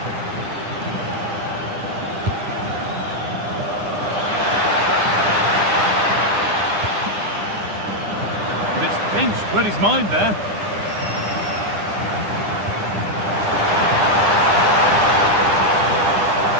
But it's pinched, read his mind there.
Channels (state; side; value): late; left; 9.9 ms